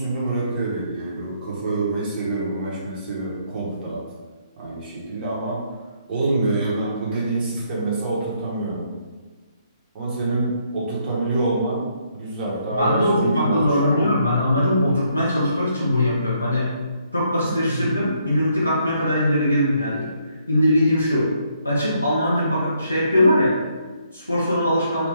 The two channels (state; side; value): inverted; both; correlation -0.71